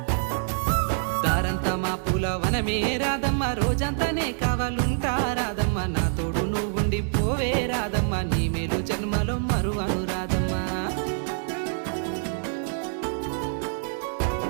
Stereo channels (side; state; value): left; silent; digital silence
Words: దారంతా మా పూలవనమే రాధమ్మ, రోజంతానే కావాలుంటా రాధమ్మ, నా తోడు నువ్వుండి పోవే రాధమ్మ, నీ మేలు జన్మలో మరువను రాధమ్మ.